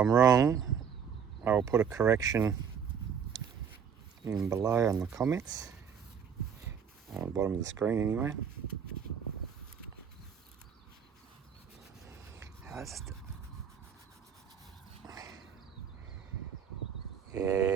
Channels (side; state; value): left; quieter; 7.3 dB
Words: wrong, I will put a correction in below on the comments. On the bottom of the screen anyway. Yeah,